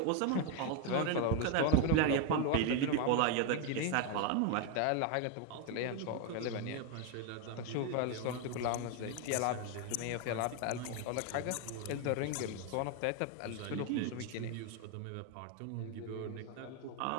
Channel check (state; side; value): different; both; correlation 0.01